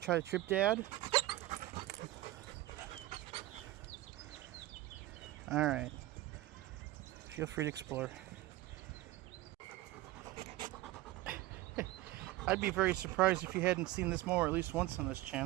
to trip, Dad? All right. Feel free to explore. I'd be very surprised if you hadn't seen this mower at least once on this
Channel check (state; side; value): quieter; left; 16.9 dB